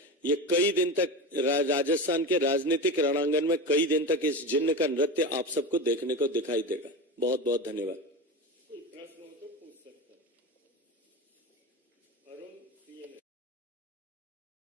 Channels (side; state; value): both; normal; correlation 0.24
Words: ये कई दिन तक राजस्थान के राजनीतिक रणांगन में कई दिन तक इस जिन्न का नृत्य आप सबको देखने को दिखाई देगा। बहुत बहुत धन्यवाद।